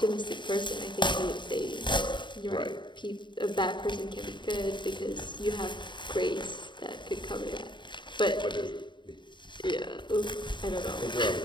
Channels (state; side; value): late; right; 0.23 ms